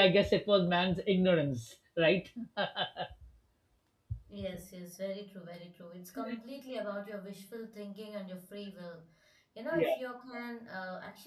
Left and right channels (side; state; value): both; identical; correlation 1.00